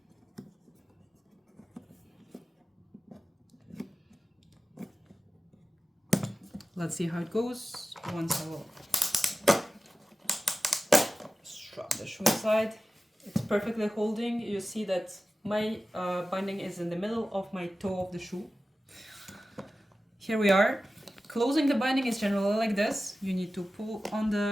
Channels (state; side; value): normal; both; correlation 0.95